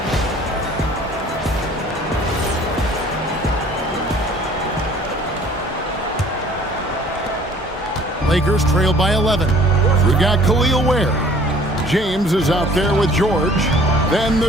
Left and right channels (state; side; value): normal; both; correlation 0.53